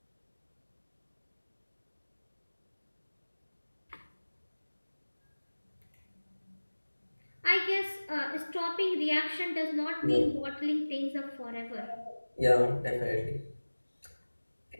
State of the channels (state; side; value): inverted; both; correlation -1.00